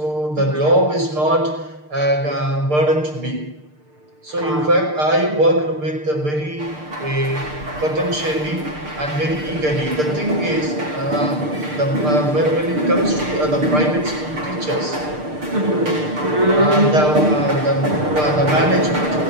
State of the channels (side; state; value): left; late; 6.6 ms